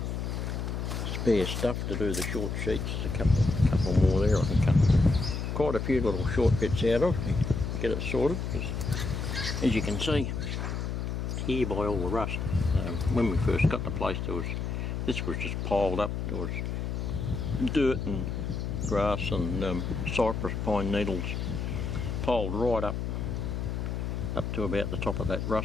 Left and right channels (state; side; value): noise; left; hum, 3 dB below the sound